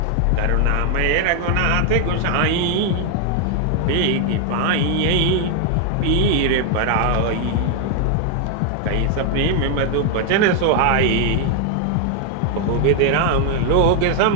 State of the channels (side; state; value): both; different; correlation 0.00